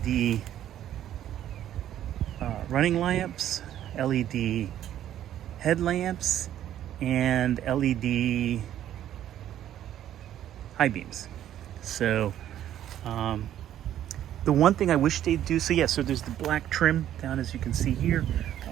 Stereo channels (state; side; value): quieter; left; 11.5 dB